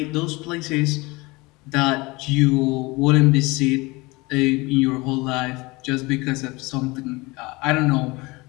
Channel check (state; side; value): quieter; right; 23.7 dB